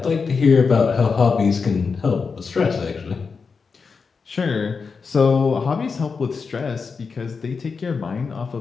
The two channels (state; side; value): quieter; right; 5.1 dB